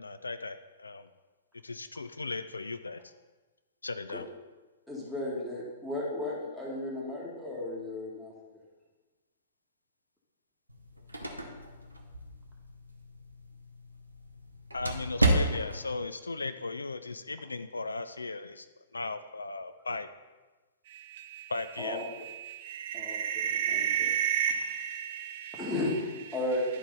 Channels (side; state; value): both; inverted; correlation -0.49